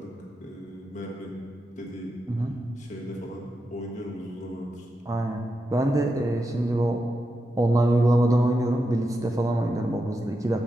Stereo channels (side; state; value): both; normal; correlation 0.87